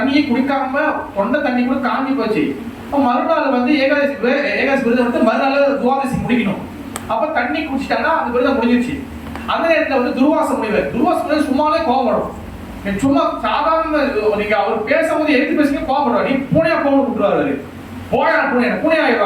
குடிக்காம தொண்டை தண்ணி கூட காஞ்சி போச்சு. மறுநாள் வந்து ஏகாதசி விரதம் எடுத்து மறுநாள் துவாதசி முடிக்கணும். அப்ப தண்ணி குடிச்சிட்டாங்கன்னா அந்த விரதம் முடிஞ்சிருச்சு. அந்த நேரத்தில் வந்து துர்வாச முனிவர் சும்மாவே கோபப்படும். சும்மா சாதாரண நீங்க அவர் பேசும்போது எடுத்து பேசுங்க கோபப்படுவார். நீ பூனையா கோபம் விட்டுருவாரு. பூனை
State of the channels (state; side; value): identical; both; correlation 1.00